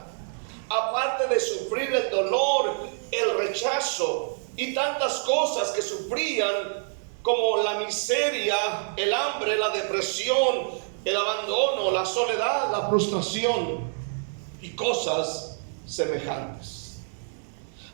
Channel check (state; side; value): silent; left; 60 dB below the other